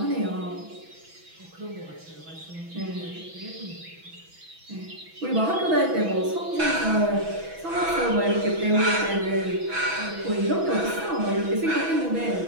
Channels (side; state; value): left; late; 6.1 ms